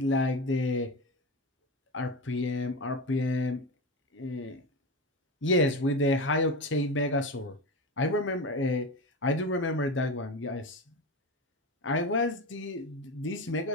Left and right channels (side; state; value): both; normal; correlation 0.22